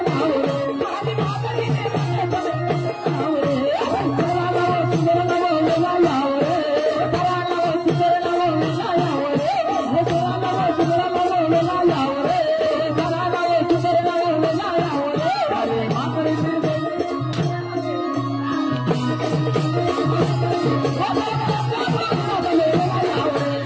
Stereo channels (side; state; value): both; identical; correlation 1.00